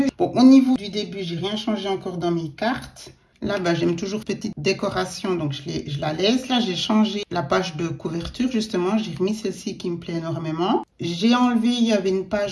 Bon, au niveau du début, j'ai rien changé encore dans mes cartes. Là, j'aime toujours petite décoration, donc je la laisse. Là, j'ai changé la page de couverture, justement. J'ai remis celle-ci qui me plaît énormément. J'ai enlevé, il y avait une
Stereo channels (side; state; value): both; identical; correlation 1.00